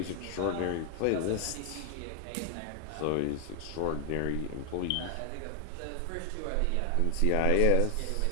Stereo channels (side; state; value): both; different; correlation 0.00